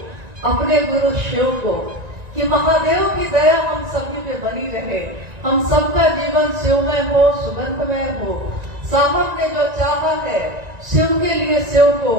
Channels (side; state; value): left; late; 1.9 ms